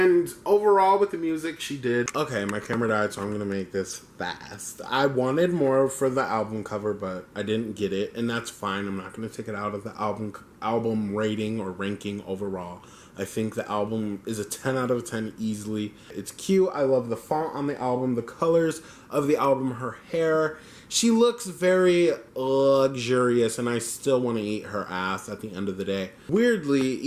overall with the music, she did. Okay, my camera died, so I'm gonna make this fast. I wanted more for the album cover, but I didn't get it, and that's fine. I'm not gonna take it out of the album rating or ranking overall. I think the album is a 10 out of 10 easily. It's cute. I love the font on the album, the colors of the album, her hair. She looks very luxurious, and I still want to eat her ass at the end of the day. Weirdly,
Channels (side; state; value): both; identical; correlation 1.00